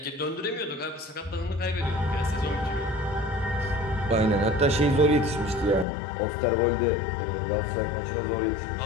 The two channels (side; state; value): right; drops out; at 5.9 s